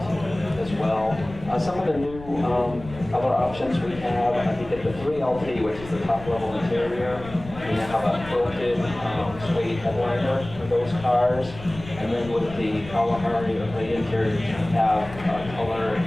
as well. Some of the new color options we have, you get the 3LT, which is the top level interior. We now have a quilted suede headliner for those cars. And then with the Kalahari or the interior, you have color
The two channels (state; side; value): noise; left; rumble, 15 dB below the sound